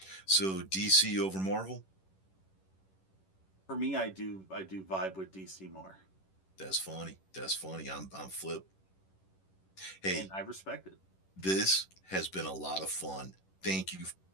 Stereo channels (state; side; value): late; right; 11 ms